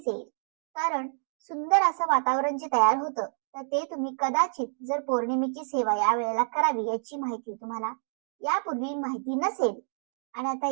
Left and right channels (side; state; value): left; silent; digital silence